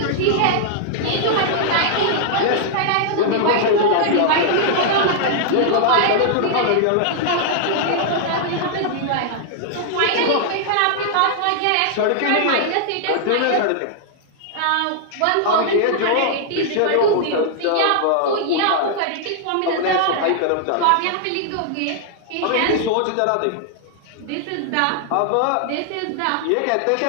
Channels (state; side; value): different; both; correlation -0.01